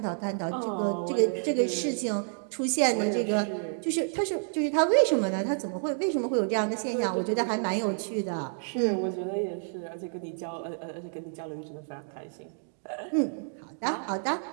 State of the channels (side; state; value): left; silent; digital silence